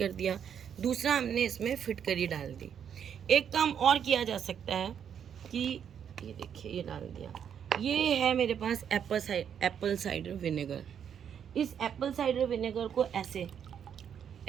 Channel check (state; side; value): quieter; left; 8.3 dB